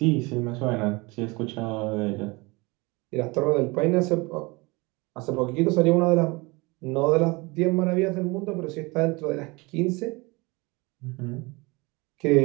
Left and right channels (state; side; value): quieter; left; 25.3 dB